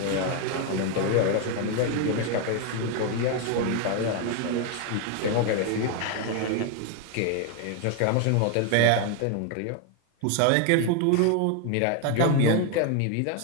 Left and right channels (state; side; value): different; both; correlation 0.01